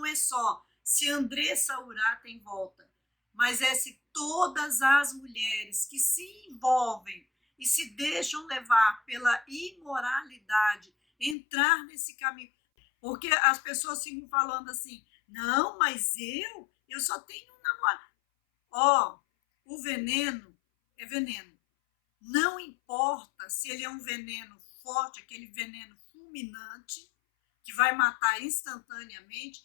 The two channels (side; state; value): right; drops out; at 11.4 s